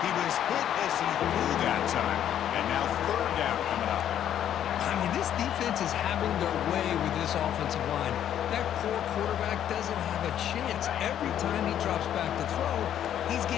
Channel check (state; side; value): quieter; right; 10.4 dB